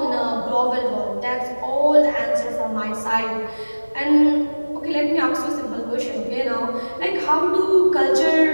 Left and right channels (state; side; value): inverted; both; correlation -1.00